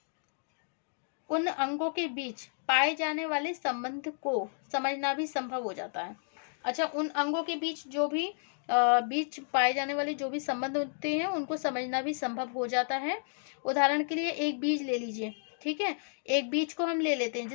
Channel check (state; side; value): silent; right; digital silence